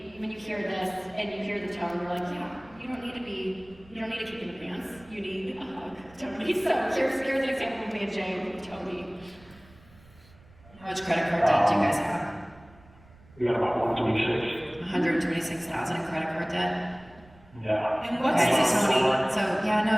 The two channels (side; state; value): right; noise; rumble, 25 dB below the sound